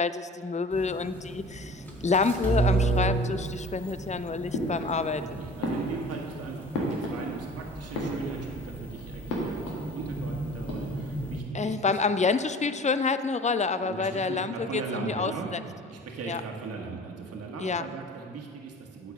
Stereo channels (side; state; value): both; normal; correlation 0.44